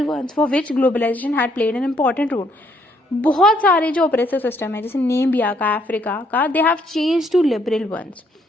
ones for which globalization had played an important role. बहुत सारे जो oppressive system है जैसे नेमिबिया का, अफ्रीका का, they have changed to liberal ones.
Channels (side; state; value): both; normal; correlation 0.70